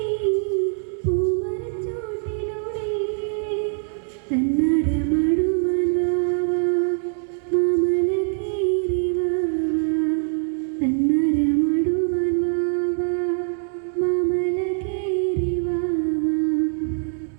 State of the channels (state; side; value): silent; left; 59 dB below the other